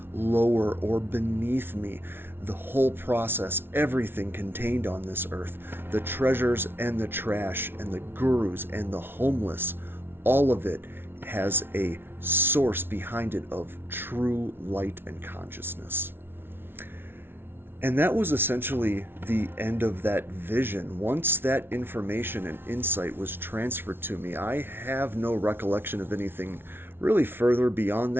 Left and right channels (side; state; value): left; late; 0.11 ms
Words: lower or beneath me. The whole process, everything contained on this earth, the treasures and the trash and the gurus and the homeless, all of it has a source behind it of true light and consciousness. And that was essentially the end of that vision. Once that information and insight was transferred to me, I have no recollection of anything really further beyond